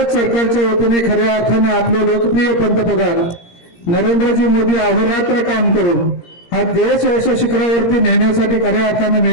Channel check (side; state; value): right; late; 17 ms